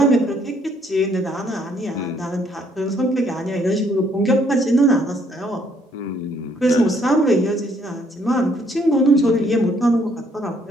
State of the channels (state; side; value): normal; both; correlation 0.67